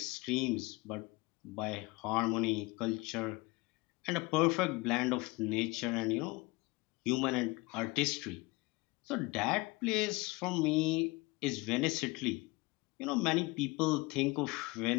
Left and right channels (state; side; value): quieter; right; 23.8 dB